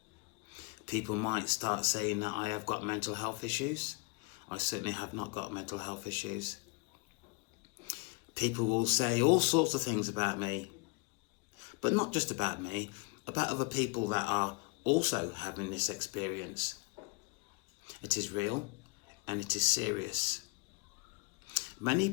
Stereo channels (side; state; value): right; quieter; 29.2 dB